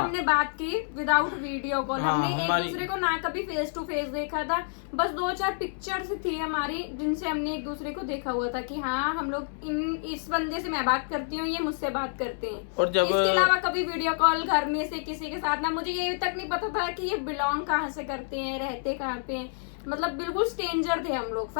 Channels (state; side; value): silent; right; 58 dB below the other